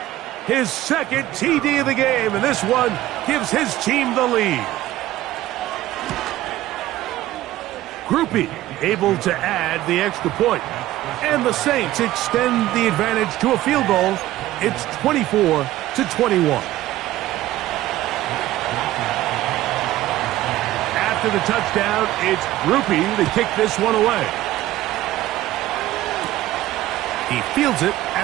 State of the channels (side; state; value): left; quieter; 15.3 dB